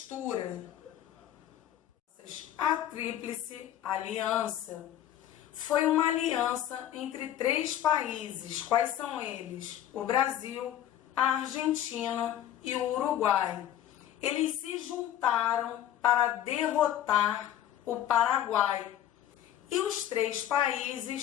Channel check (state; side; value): quieter; right; 11.7 dB